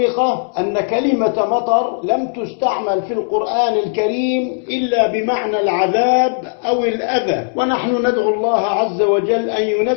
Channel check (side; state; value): right; silent; 68 dB below the other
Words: أن كلمة مطر لم تستعمل في القرآن الكريم إلا بمعنى العذاب أو الأذى، ونحن ندعو الله عز وجل أن